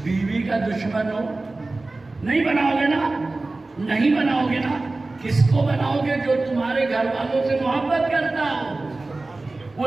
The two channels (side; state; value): left; quieter; 3.2 dB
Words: بیوی کا دشمن ہو، نہیں بناؤ گے نا؟ نہیں بناؤ گے نا؟ کس کو بناؤ گے؟ جو تمہارے گھر والوں سے محبت کرتا ہو،